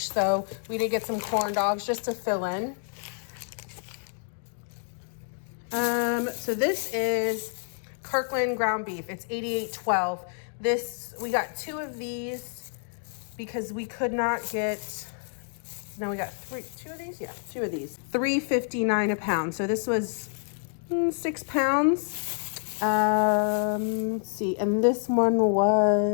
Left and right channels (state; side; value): silent; right; 59 dB below the other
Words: So we did get some corn dogs just to fill in. So this is Kirkland ground beef. It's $88.12. This, we got 2 of these because we could not get, no, we got 2 of these? Yeah, 2 of these. $3.59 a pound. So this was 6 pounds. Let's see, and this one